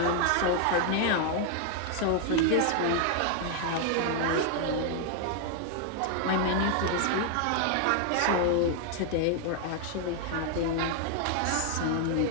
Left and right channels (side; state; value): both; different; correlation 0.00